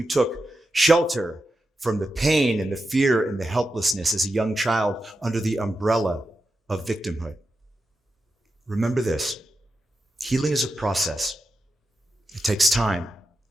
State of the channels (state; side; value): normal; both; correlation 0.89